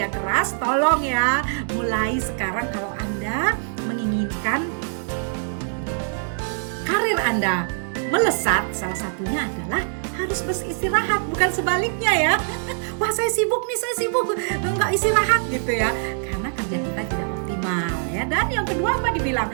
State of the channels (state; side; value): silent; left; digital silence